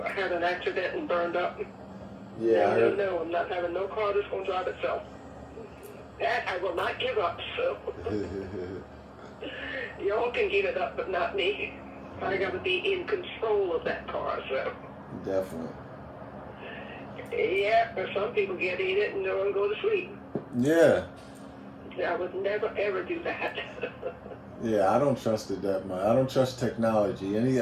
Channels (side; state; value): both; identical; correlation 1.00